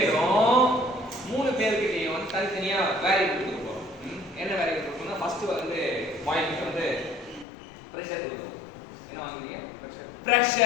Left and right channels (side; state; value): right; drops out; at 7.5 s